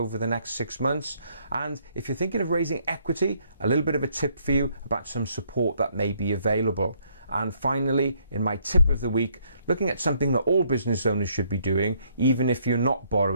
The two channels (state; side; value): inverted; both; correlation -0.68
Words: the next 6 months. And if you're thinking of raising equity, a little bit of a tip for you about some support that may be available. And finally, in my tip of the week, looking at something that all business owners should be doing, even if you're not